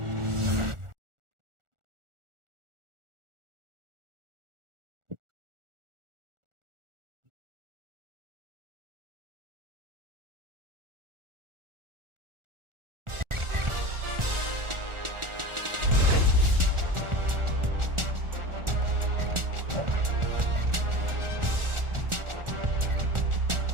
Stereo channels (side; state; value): left; late; 1.4 ms